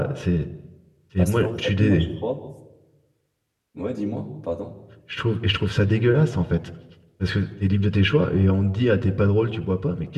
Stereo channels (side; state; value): both; identical; correlation 1.00